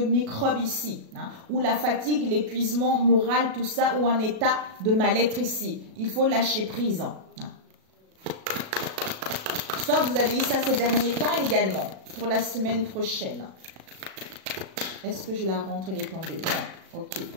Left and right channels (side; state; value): left; late; 37 ms